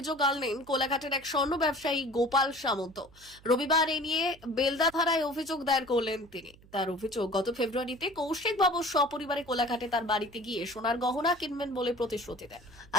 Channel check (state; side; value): noise; right; hum, 25 dB below the sound